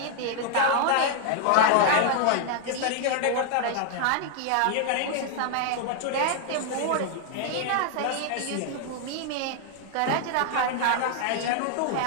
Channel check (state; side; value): different; both; correlation 0.00